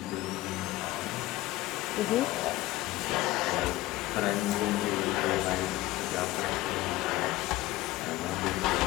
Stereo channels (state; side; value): quieter; right; 17.7 dB